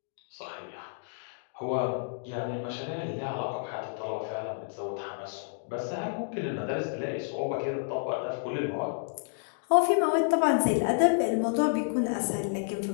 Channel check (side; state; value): right; silent; digital silence